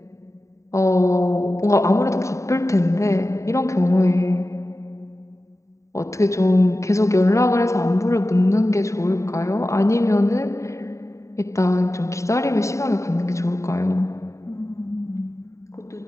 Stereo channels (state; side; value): late; right; 0.14 ms